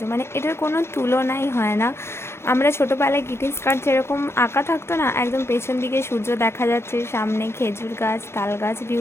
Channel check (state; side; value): late; right; 0.12 ms